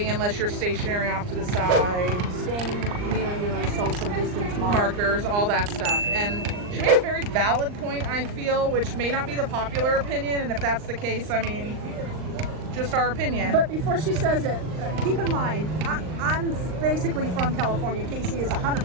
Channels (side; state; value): left; late; 39 ms